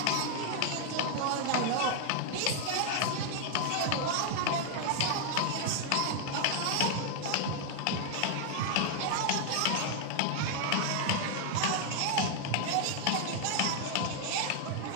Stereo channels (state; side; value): different; both; correlation 0.00